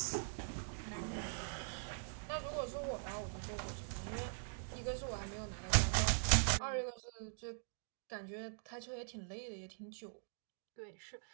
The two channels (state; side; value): silent; left; digital silence